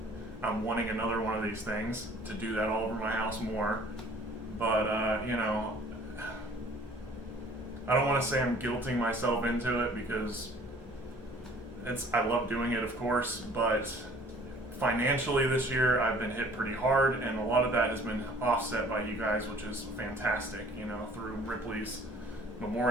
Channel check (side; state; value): both; normal; correlation 0.53